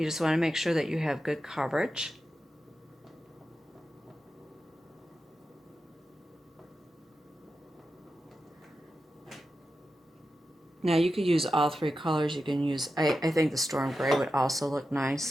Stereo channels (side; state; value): both; normal; correlation 0.91